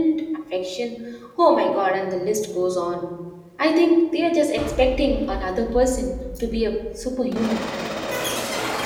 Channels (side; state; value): both; identical; correlation 1.00